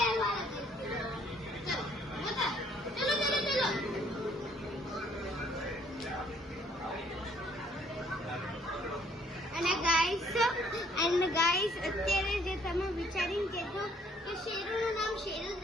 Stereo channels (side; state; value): both; normal; correlation 0.64